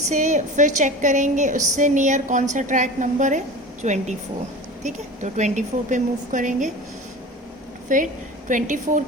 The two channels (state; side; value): normal; both; correlation 0.34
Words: से फिर चेक करेंगे उससे नियर कौन सा ट्रैक नंबर है, 24. ठीक है, तो 24 पे मूव करेंगे. फिर 24